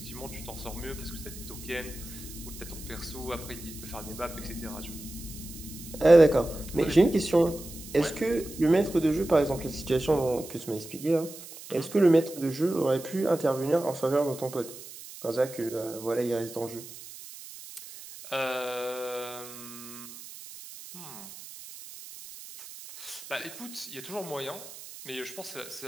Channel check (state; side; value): noise; right; hiss, 14 dB below the sound